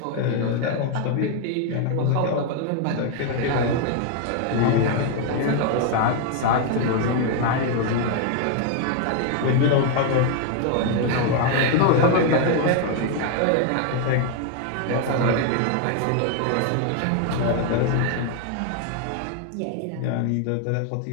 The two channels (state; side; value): different; both; correlation 0.00